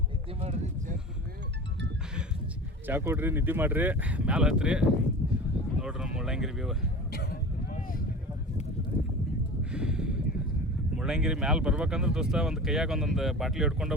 ಚಾ ಕೊಡ್ರಿ, ನಿದ್ದೆ ಮಾಡಿರಿ, ಮ್ಯಾಲೆ ಹತ್ರಿ. ನೋಡ್ರಿ ನಮ್ಮ ಮುಳ್ಳಯ್ಯನಗಿರಿ ವ್ಯೂ. ಮುಳ್ಳಯ್ಯನಗಿರಿ ಮ್ಯಾಲೆ ಬರ್ಬೇಕಂದ್ರೆ ದೋಸ್ತ ಒಂದು ಕೈಯಾಗ ಒಂದೊಂದು ಬಾಟ್ಲಿ ಹಿಡ್ಕೊಂಡು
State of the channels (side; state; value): both; normal; correlation 0.34